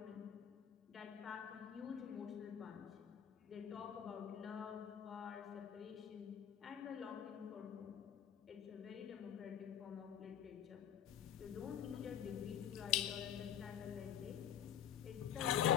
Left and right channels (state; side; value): quieter; right; 9.7 dB